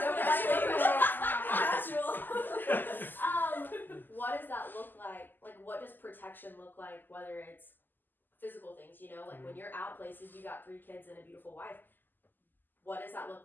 Casual. what does that look like? Like, what does protection look like? Whether it's physical things, you know, like when you're out places, you got 3 kids and a beautiful wife. What does that look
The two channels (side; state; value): right; late; 0.090 ms